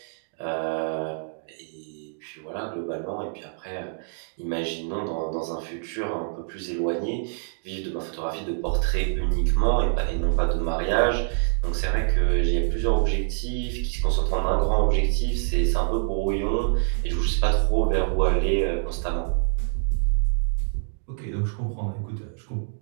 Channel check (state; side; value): silent; left; digital silence